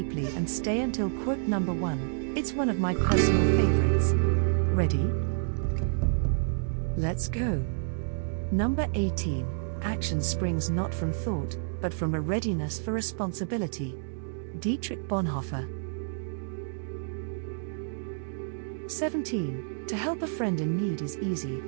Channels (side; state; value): left; silent; digital silence